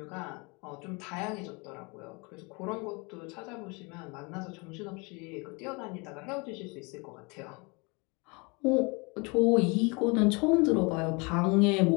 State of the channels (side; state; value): right; quieter; 29.2 dB